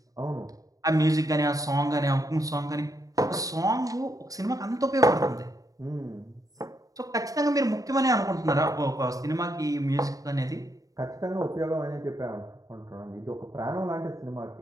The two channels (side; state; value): left; late; 0.17 ms